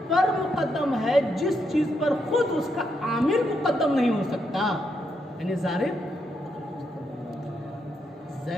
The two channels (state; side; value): normal; both; correlation 0.80